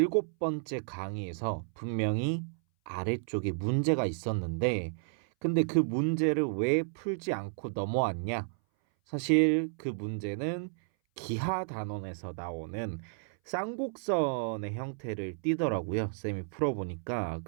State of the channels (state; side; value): silent; left; 56 dB below the other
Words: 번째 강의에서 분명히 아래쪽에 문제가 있었는데, 근데 그 문제를 왜 풀지 않고 넘어왔냐? 사실 그 문제는 기하 단원에서 나오는 쌍곡선의 형태를 띠더라고요. 쌤이 풀어보니까.